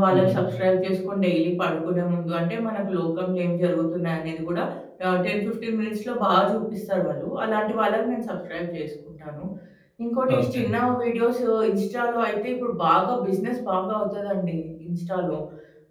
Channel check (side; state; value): both; identical; correlation 1.00